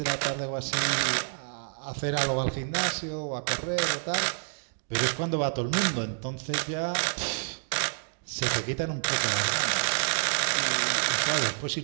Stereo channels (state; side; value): silent; left; digital silence